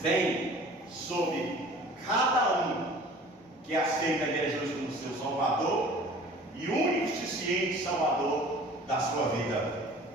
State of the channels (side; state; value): both; normal; correlation 0.46